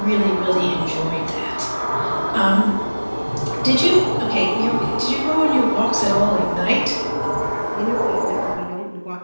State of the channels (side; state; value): both; inverted; correlation -1.00